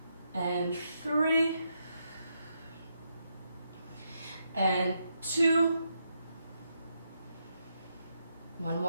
And 3. And 2. 1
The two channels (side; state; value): both; inverted; correlation -0.81